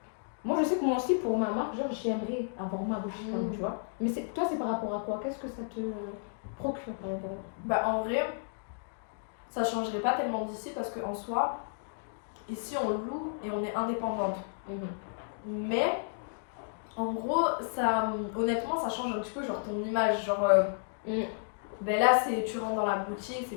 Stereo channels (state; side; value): silent; right; digital silence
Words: Moi je sais que moi aussi pour ma marque, genre j'aimerais avoir ma boutique quand même, tu vois. Mais toi c'est par rapport à quoi? Qu'est-ce que ça te procure par exemple? Bah, en vrai, ça changerait pas tellement d'ici parce qu'en soi, ici on loue et on est indépendante. Mais en gros, ça, honnêtement, ça change un petit peu genre ton image. Genre, ben là, tu rentres dans la boutique, c'est